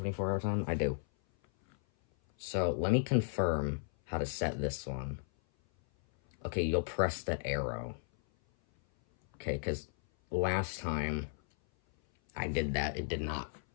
time, I do. So, let me confirm how to set this one. Okay, you'll press the arrow. Okay, because last time I did that, it did not.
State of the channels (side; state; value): right; silent; 55 dB below the other